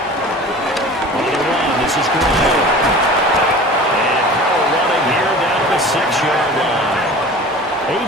This is Gray. And power running here down to the 6-yard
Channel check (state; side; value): normal; both; correlation 0.40